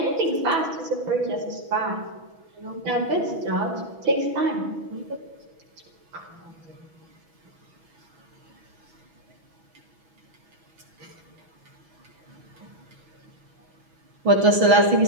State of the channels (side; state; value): left; late; 6.2 ms